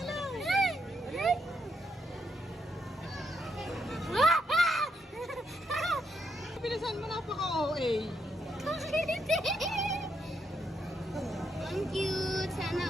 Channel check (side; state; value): both; normal; correlation 0.79